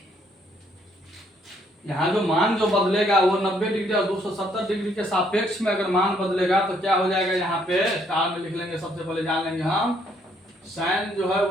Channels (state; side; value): normal; both; correlation 0.68